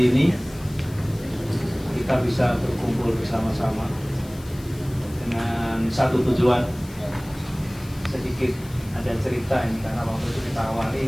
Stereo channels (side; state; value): left; noise; hiss, 21 dB below the sound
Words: ini kita bisa berkumpul bersama-sama dengan satu tujuan. Sedikit ada cerita ini karena waktu itu kita